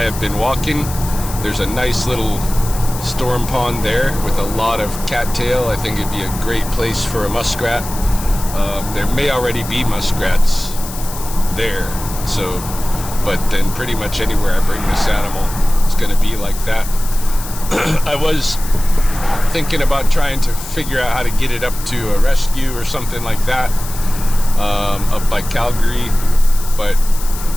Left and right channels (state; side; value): noise; left; hiss, 12 dB below the sound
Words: been walking, there's a nice little storm pond there with a lot of cattail. I think it'd be a great place for a muskrat. There may already be muskrats there, so, but then pretty much anywhere I bring this animal, it's going to be like that. I was thinking about trying to figure out how to get it up to a rescue or something like that, up by Calgary, but